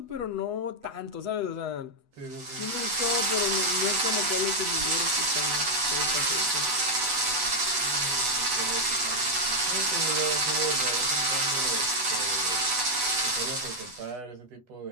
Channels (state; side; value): late; left; 8.0 ms